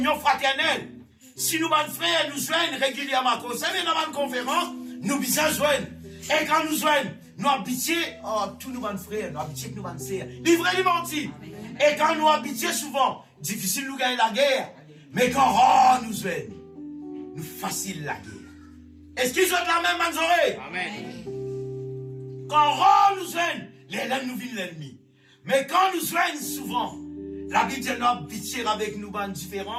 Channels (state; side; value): identical; both; correlation 1.00